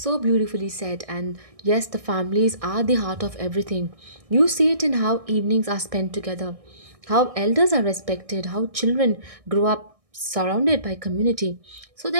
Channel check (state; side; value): late; left; 1.6 ms